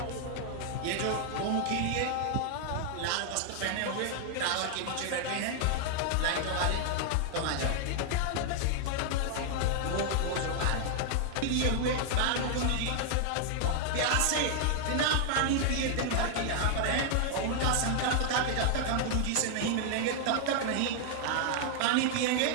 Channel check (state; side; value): different; both; correlation 0.00